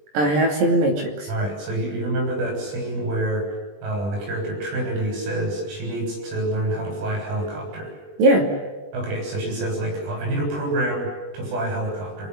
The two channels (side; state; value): left; late; 20 ms